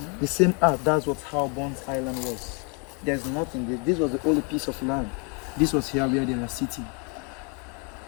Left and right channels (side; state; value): right; quieter; 35.3 dB